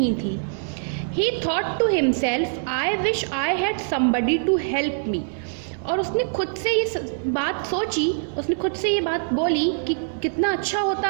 थी. He thought to himself I wish I had somebody to help me. और उसने खुद से ये बात सोची, उसने खुद से ये बात बोली कि कितना अच्छा होता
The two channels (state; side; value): silent; left; digital silence